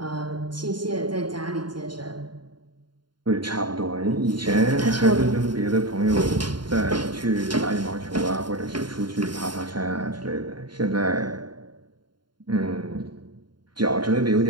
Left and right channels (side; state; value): left; late; 0.72 ms